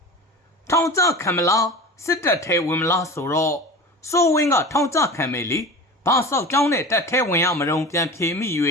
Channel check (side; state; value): both; normal; correlation 0.33